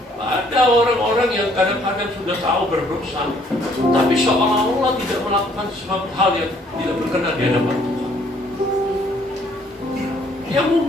Ada orang-orang yang kadang-kadang sudah tahu berdosa, tapi seolah-olah tidak melakukan sesuatu hal yang tidak berkenan di hadapan Tuhan. Ya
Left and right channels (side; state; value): both; normal; correlation 0.63